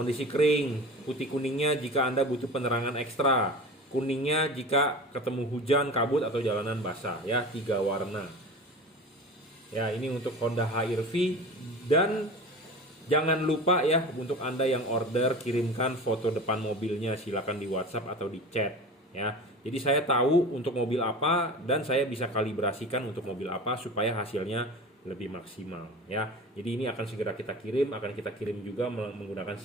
kering, putih kuningnya jika Anda butuh penerangan ekstra. Kuningnya jika ketemu hujan, kabut, atau jalanan basah ya, 3 warna. Ya, ini untuk Honda HR-V. Dan jangan lupa ya, untuk Anda yang order, kirimkan foto depan mobilnya, silakan di WhatsApp atau di chat ya. Jadi saya tahu untuk mobil apa dan saya bisa kalibrasikan untuk mobil apa supaya hasilnya lebih maksimal ya. Jadi ini akan segera kita kirim, akan kita kirim juga menggunakan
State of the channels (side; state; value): both; normal; correlation 0.34